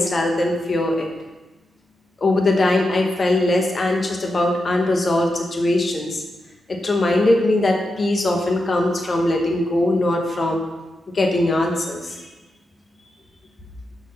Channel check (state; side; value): normal; both; correlation 0.87